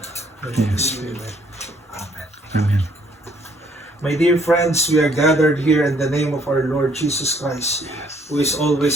and Holy Spirit. Amen. Amen. My dear friends, we are gathered here in the name of our Lord Jesus Christ, who is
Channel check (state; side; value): normal; both; correlation 0.65